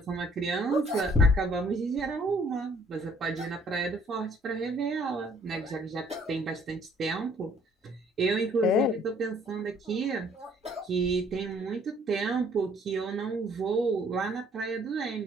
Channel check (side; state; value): both; normal; correlation 0.61